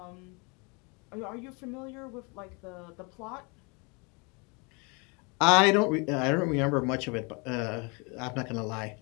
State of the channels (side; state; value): right; quieter; 30.9 dB